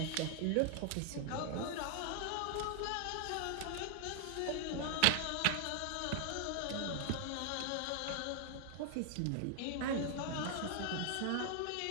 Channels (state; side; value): different; both; correlation 0.00